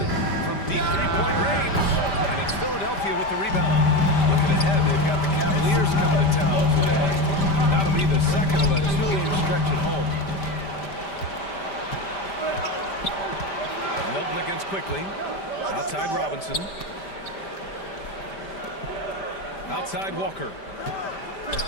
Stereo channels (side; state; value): right; late; 5.1 ms